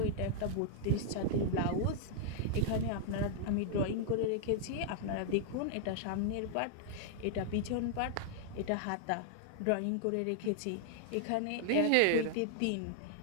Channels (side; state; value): both; different; correlation 0.00